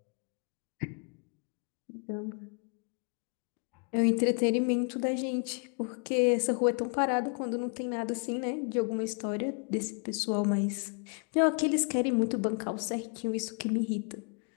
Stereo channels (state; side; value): quieter; right; 39.6 dB